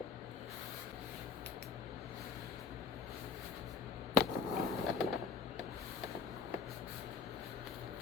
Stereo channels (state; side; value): quieter; right; 5.5 dB